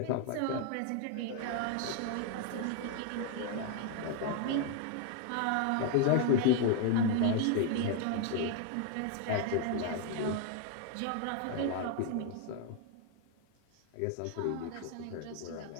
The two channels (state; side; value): different; both; correlation 0.00